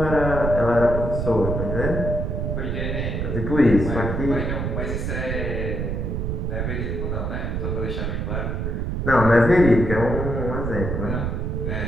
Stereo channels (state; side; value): noise; right; rumble, 2 dB below the sound